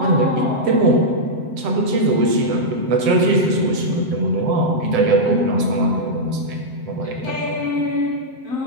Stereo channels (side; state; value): left; late; 7.7 ms